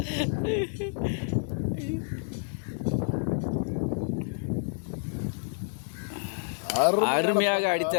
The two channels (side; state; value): right; silent; digital silence